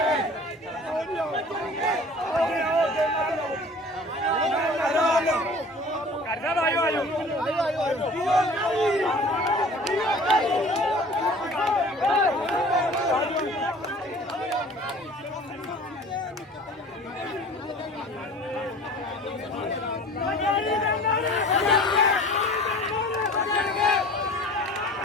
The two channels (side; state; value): both; normal; correlation 0.45